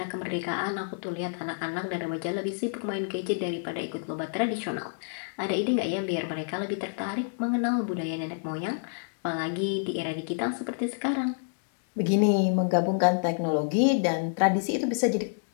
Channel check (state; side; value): silent; right; digital silence